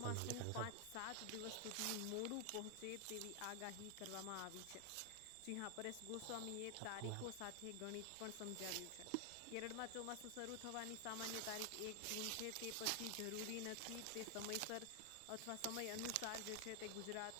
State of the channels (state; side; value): different; both; correlation 0.00